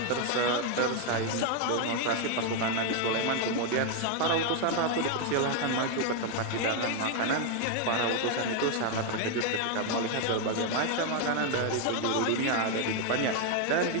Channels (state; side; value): different; both; correlation 0.01